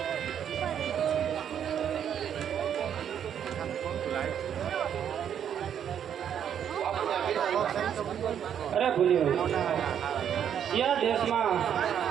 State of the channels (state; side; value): quieter; left; 9.0 dB